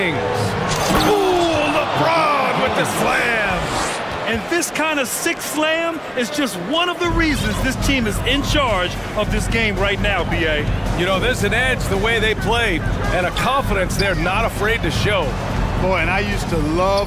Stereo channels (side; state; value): both; identical; correlation 1.00